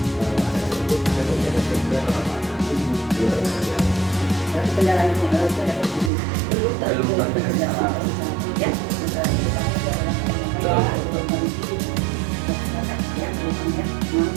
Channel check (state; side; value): drops out; left; at 6.1 s